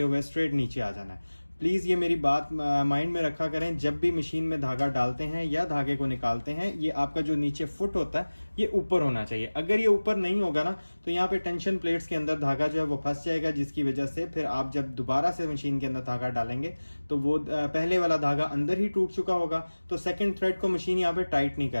हुए स्ट्रेट नीचे आ जाना है। प्लीज़ ये मेरी बात माइंड में रखा करें, जब भी मशीन में धागा डालते हैं या धागे को निकालते हैं, ये आपका जो नीचे फुट होता है ये ऊपर होना चाहिए। अगर ये ऊपर नहीं होगा ना तो यहाँ पे टेंशन प्लेट्स के अंदर धागा जो है वो फंस जाएगा, जिसकी वजह से फिर आप जब दोबारा से मशीन के अंदर धागा डालेंगे तो वो पहले वाला धागा अंदर ही टूट चुका होगा, तो सेकेंड थ्रेड को मशीन यहाँ पे टाइट नहीं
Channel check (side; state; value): both; inverted; correlation -1.00